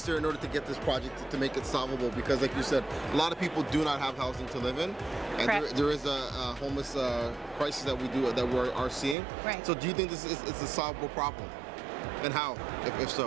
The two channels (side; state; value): left; drops out; at 9.2 s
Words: in order to get this project to make it solvable? Because like you said, a lot of people do not have housing to live in, and there is a homeless crisis that we are seeing. Right. So do you think this is a solvable problem? And how, if